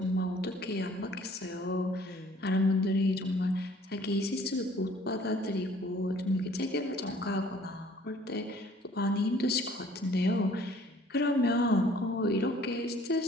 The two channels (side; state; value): both; normal; correlation 0.56